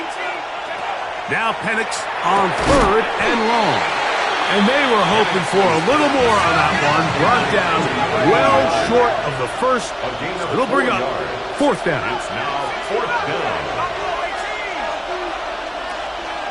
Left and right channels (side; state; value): both; identical; correlation 1.00